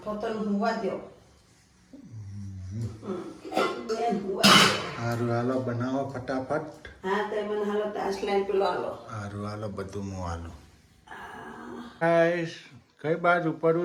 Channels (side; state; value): both; identical; correlation 1.00